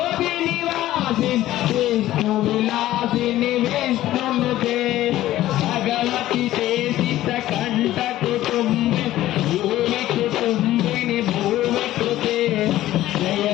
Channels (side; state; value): right; quieter; 14.5 dB